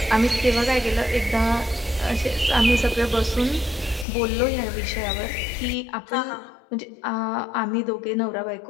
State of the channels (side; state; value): right; drops out; at 4.0 s